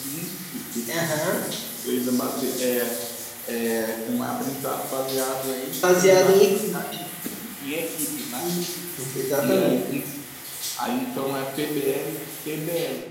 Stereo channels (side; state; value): both; identical; correlation 1.00